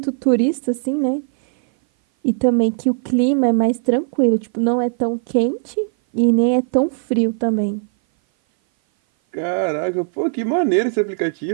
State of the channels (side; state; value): left; silent; 58 dB below the other